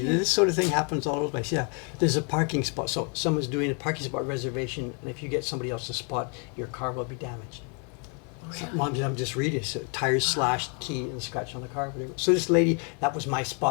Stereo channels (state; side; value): quieter; right; 37.2 dB